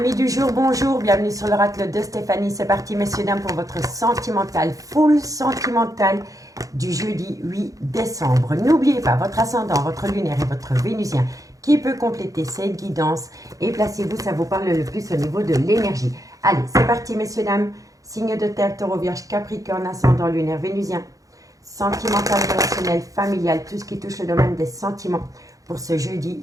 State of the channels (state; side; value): late; left; 0.17 ms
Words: du jour, bonjour, bienvenue sur l'oracle de Stéphanie. C'est parti messieurs dames pour votre sentimental, full sentimental du jeudi 8 décembre. N'oubliez pas votre ascendant, votre lunaire et votre vénusien qui peut compléter cette guidance. Et placez-vous, ça vous parle le plus au niveau de l'énergie. Allez, c'est parti messieurs dames. Signe de terre, taureau, vierge, capricorne, ascendant, lunaire, vénusien. Sentimental, relationnel, familial, tout ce qui touche le domaine des sentiments pour ce jeudi